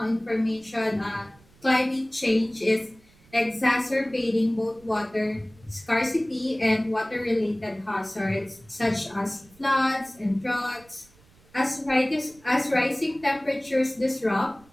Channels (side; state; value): right; noise; rumble, 28 dB below the sound